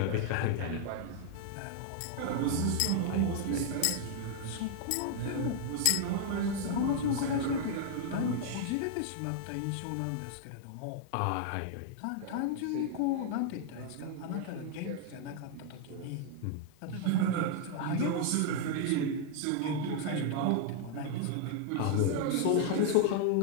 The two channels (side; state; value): both; different; correlation -0.01